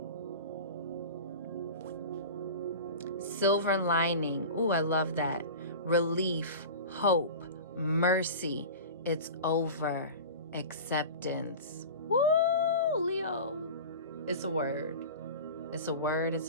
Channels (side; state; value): both; inverted; correlation -0.33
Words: Silver lining. Ooh, I love that. relief, hope, mercy. It's over. Acceptance. Woo, Leo. It's a word. It's a word.